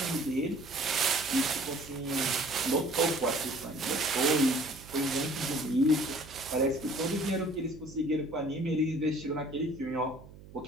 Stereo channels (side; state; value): right; noise; hum, 18 dB below the sound